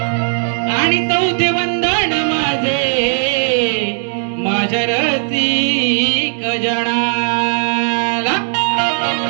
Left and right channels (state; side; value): silent; left; 65 dB below the other